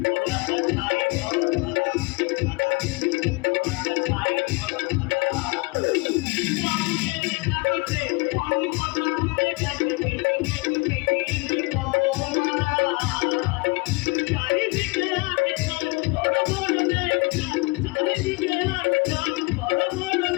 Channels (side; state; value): right; quieter; 26.4 dB